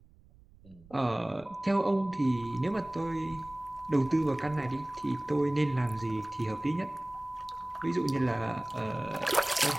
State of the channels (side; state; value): right; noise; rumble, 25 dB below the sound